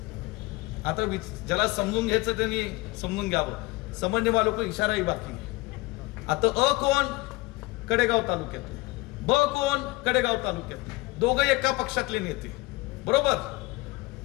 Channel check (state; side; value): quieter; right; 22.0 dB